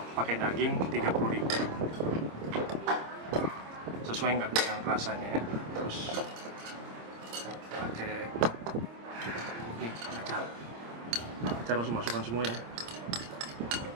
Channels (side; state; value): left; late; 26 ms